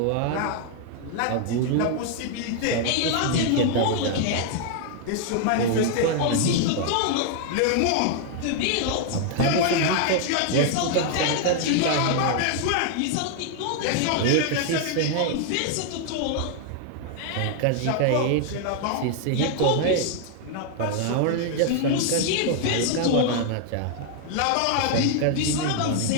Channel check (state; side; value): different; both; correlation 0.00